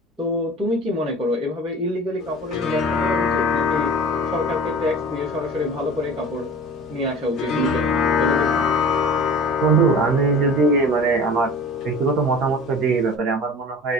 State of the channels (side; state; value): both; normal; correlation 0.40